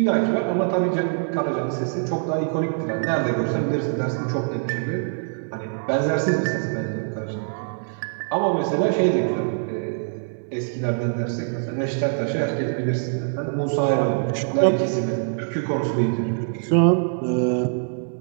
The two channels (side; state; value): left; silent; digital silence